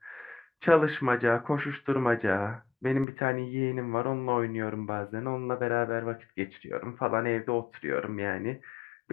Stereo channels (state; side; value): drops out; right; at 3.1 s